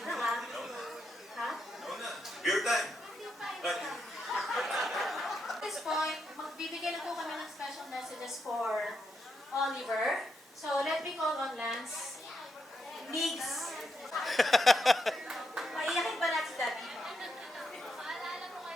Beer time. At this point, magbibigay na po kami ng special messages for Oliver. So, let me call on Lance. Migs. Paiyakin ba natin si Daddy?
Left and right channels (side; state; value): both; normal; correlation 0.82